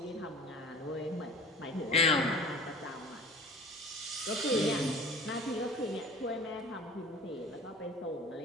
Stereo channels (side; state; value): both; normal; correlation 0.42